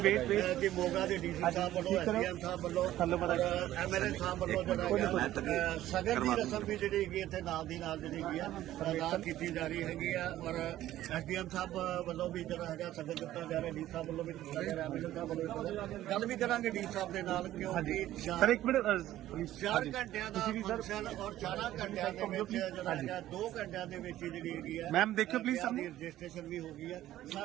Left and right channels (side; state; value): left; quieter; 13.9 dB